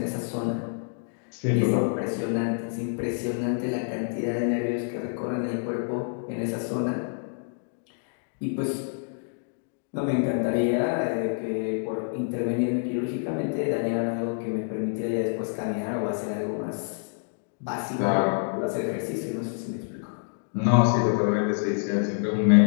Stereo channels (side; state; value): right; silent; digital silence